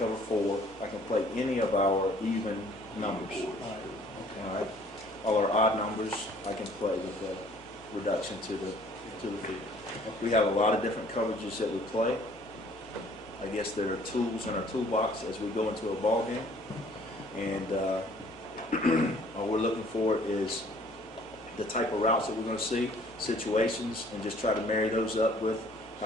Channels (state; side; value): normal; both; correlation 0.57